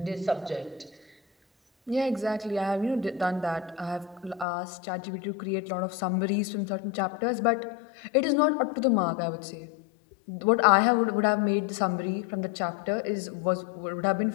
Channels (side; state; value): right; drops out; at 4.5 s